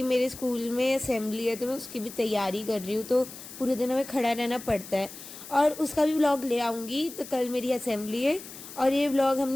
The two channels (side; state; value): left; noise; hiss, 14 dB below the sound